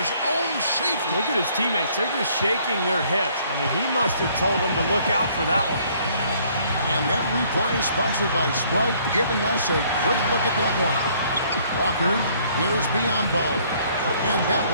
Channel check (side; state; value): both; inverted; correlation -0.62